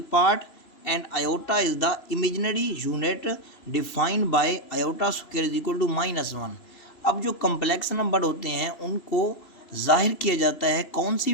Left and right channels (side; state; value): right; late; 3.0 ms